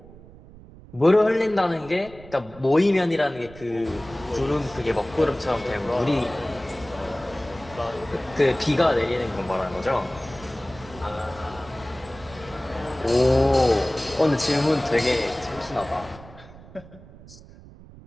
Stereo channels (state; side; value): noise; right; rumble, 20 dB below the sound